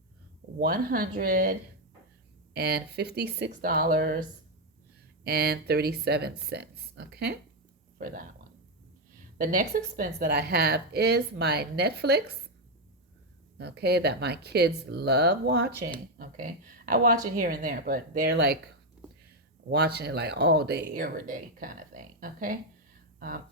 $156.37. Okay. For that one. The next expense that I have is my Netflix. Okay, that my kids love watching. Okay, I watch it here and there, but they're like watching it like all day, every day kind of thing. Okay,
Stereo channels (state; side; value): normal; both; correlation 0.04